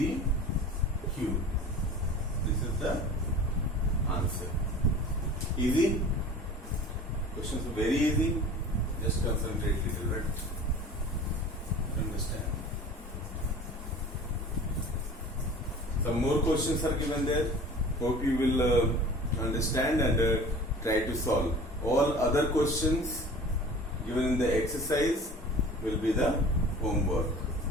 This is the answer. Easy? Questions are very easy. Just concentrate little bit. Understand. Some more questions are given there. Hope you will understand and try to solve. All other questions given in the exercise will be the homework.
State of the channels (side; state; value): both; normal; correlation 0.41